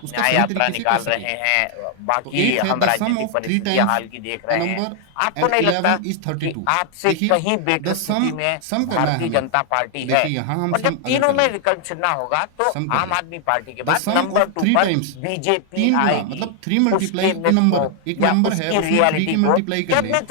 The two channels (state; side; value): different; both; correlation 0.00